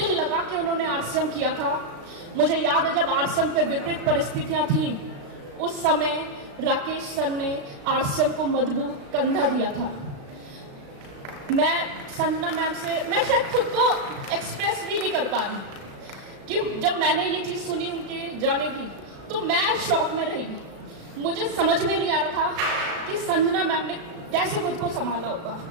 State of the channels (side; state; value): left; late; 36 ms